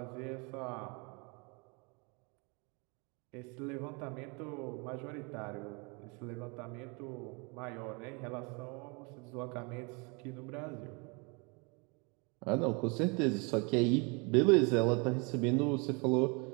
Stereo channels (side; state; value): left; quieter; 31.2 dB